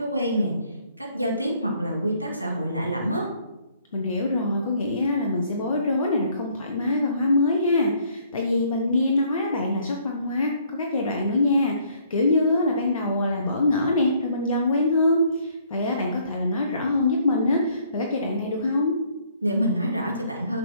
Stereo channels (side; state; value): both; inverted; correlation -0.63